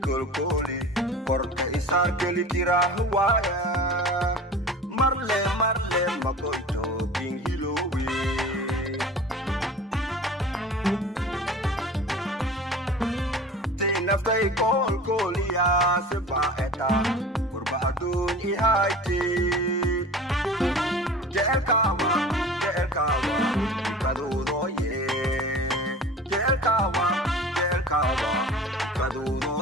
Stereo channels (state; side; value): normal; both; correlation 0.39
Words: koli korka isar keli tira huaya marle marle makoito bingilowe tinaftai kol kolia seba eta kurba adun ihaiti jel kawa kadudo ye jel kawa kadudo